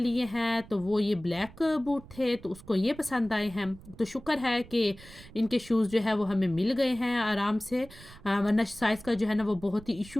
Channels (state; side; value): noise; right; rumble, 19 dB below the sound